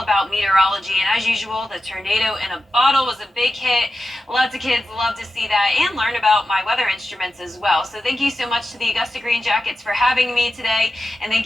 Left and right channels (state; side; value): normal; both; correlation 0.91